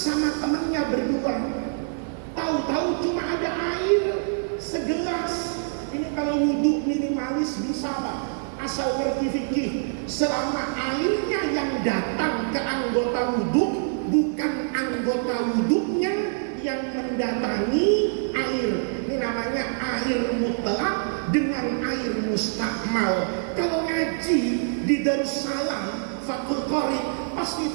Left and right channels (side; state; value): left; silent; 62 dB below the other